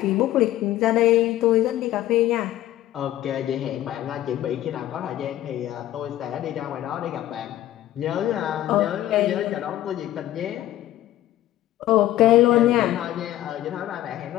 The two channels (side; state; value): right; quieter; 13.9 dB